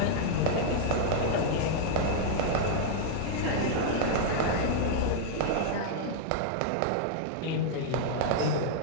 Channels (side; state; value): both; different; correlation -0.01